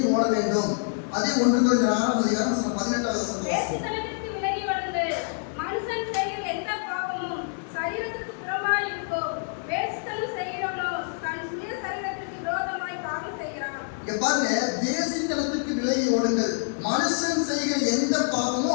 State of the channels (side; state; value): right; silent; 61 dB below the other